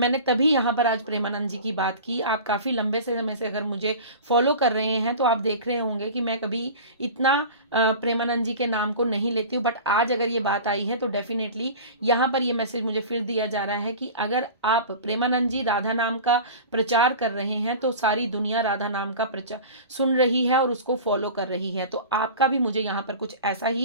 तभी यहाँ पर आज प्रेमानंद जी की बात की। आप काफ़ी लंबे से समय से अगर मुझे फॉलो कर रहे हैं तो आप देख रहे होंगे कि मैं कभी इतना प्रेमानंद जी के नाम को नहीं लेती हूँ, बट आज अगर ये बात आई है तो डेफिनेटली यहाँ पर ये मैसेज मुझे फिर दिया जा रहा है कि अगर आप प्रेमानंद जी राधा नाम का प्रचार कर रहे हैं तो सारी दुनिया राधा नाम का प्रचार सुन रही है और उसको फॉलो कर रही है। तो आपका भी मुझे यहाँ पर कुछ ऐसा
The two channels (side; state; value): both; inverted; correlation -0.35